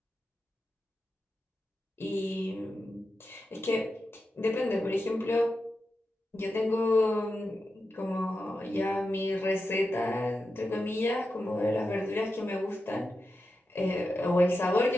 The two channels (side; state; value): both; normal; correlation 0.90